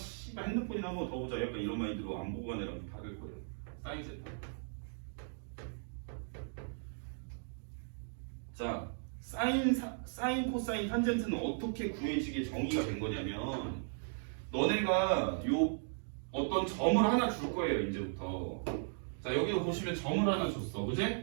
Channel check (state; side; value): silent; left; digital silence